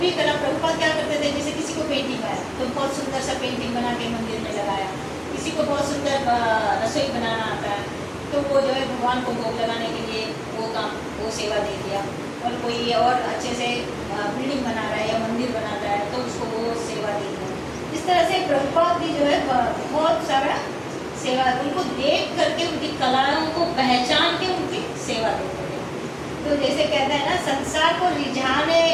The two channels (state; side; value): identical; both; correlation 1.00